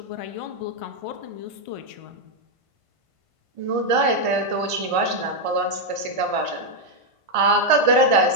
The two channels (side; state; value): left; late; 1.5 ms